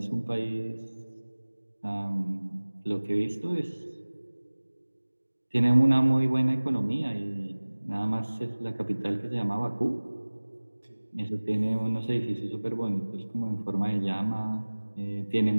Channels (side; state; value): both; inverted; correlation -1.00